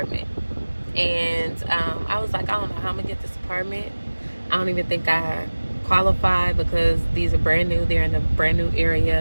And I was like, I don't know how I'm going to get this apartment. I don't even think I qualify because these are brand new. They're in a brand new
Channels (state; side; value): inverted; both; correlation -1.00